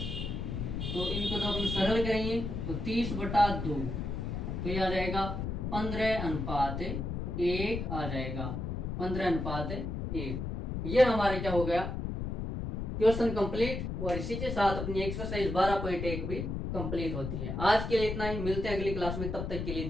तो इनको जब हम सरल करेंगे तो 30/2, तो ये आ जाएगा 15:1 आ जाएगा, 15:1। ये हमारे क्या हो गया, क्वेश्चन कंप्लीट। और इसी के साथ अपनी एक्सरसाइज 12.1 भी कंप्लीट होती है। आज के लिए इतना ही, मिलते हैं अगली क्लास में। तब तक के लिए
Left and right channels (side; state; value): left; noise; rumble, 3 dB below the sound